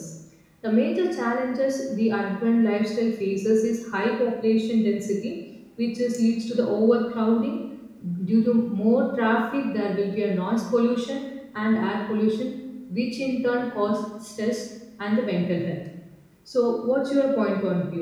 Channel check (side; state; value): both; identical; correlation 1.00